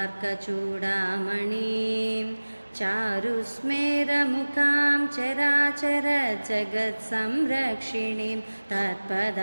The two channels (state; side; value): inverted; both; correlation -1.00